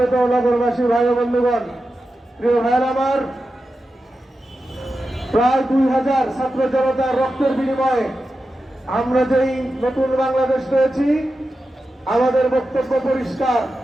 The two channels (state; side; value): normal; both; correlation 0.91